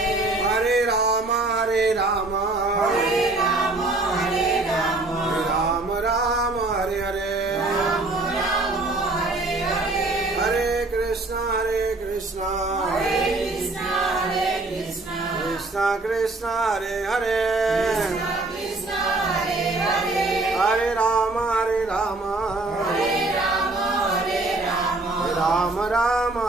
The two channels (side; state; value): left; quieter; 3.1 dB